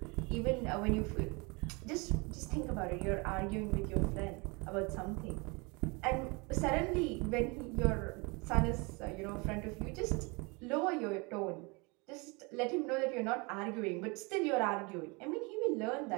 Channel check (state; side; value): quieter; left; 28.6 dB